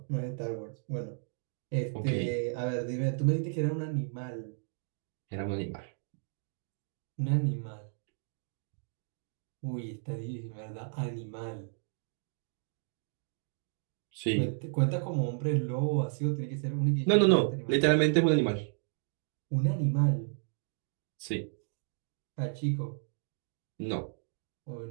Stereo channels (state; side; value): silent; left; digital silence